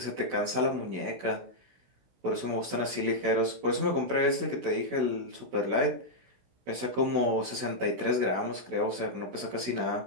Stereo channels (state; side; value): late; left; 16 ms